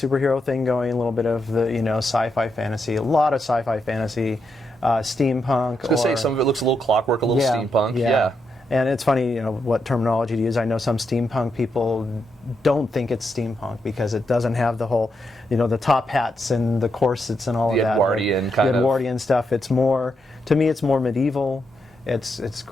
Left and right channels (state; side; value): normal; both; correlation 0.82